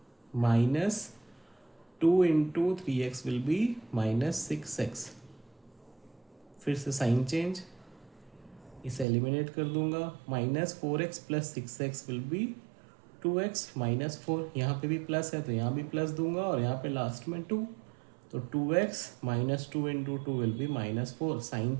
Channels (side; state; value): left; drops out; at 9.1 s